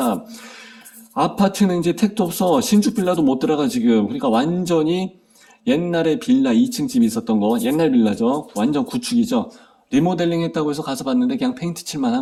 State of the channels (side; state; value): both; identical; correlation 1.00